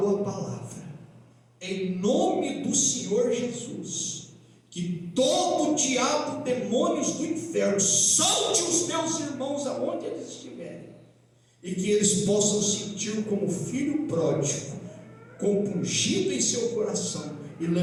a palavra em nome do Senhor Jesus, que todo diabo, demônios do inferno, solte os meus irmãos aonde eles estiverem, e que eles possam sentir como filho pródigo, compungido em seu coração, e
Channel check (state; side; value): identical; both; correlation 1.00